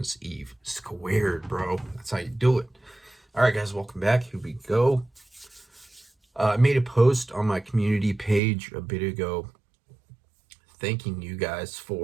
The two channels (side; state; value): left; drops out; at 8.4 s